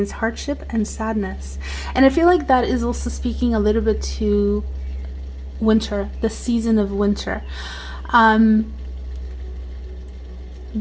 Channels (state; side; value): identical; both; correlation 1.00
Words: hardship and sadness. And I feel like that is also speaking a little bit to winter, the season of winter.